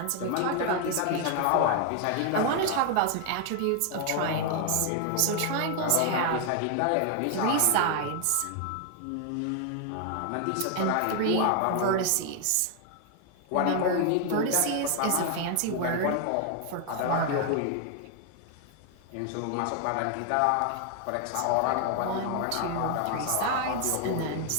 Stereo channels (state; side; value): different; both; correlation 0.00